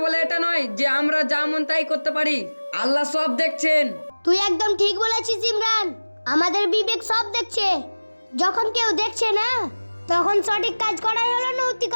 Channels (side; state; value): both; inverted; correlation -1.00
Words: বলে এটা নয় যে আমরা যা মন তাই করতে পারি। আল্লাহ সব দেখছেন। তুই একদম ঠিক বলেছিস ইমরান, আমাদের বিবেক সব দেখছে। যখন কেউ দেখছে না তখন সঠিক কাজ করাই হলো